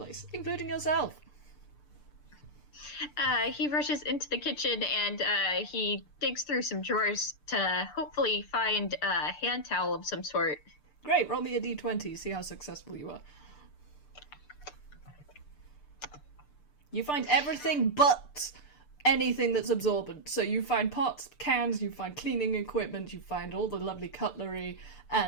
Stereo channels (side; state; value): right; late; 6.8 ms